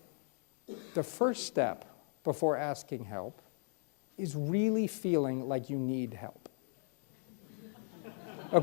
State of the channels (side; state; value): right; silent; 53 dB below the other